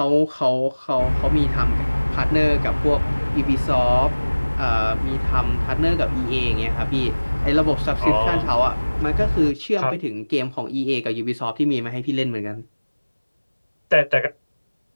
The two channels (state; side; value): inverted; both; correlation -1.00